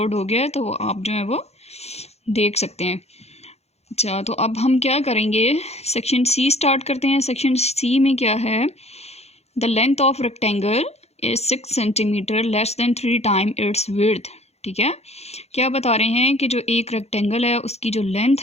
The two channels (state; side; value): late; right; 0.31 ms